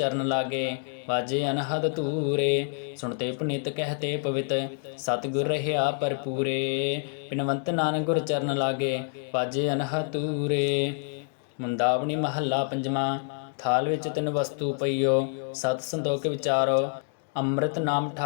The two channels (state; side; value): silent; right; 60 dB below the other